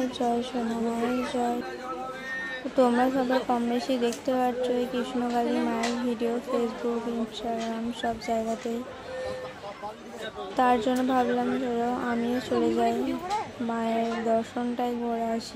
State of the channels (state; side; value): identical; both; correlation 1.00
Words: জয় সোনা মায়ের জয়। তোমরা সবাই কম বেশি দেখতে পাচ্ছ এই কৃষ্ণকালী মায়ের ভিডিও ফেসবুক, ইনস্টাগ্রাম সব জায়গাতেই। তার জন্য ভাবলাম চলো আমিও চলে যাই, মায়ের দর্শনটাই করে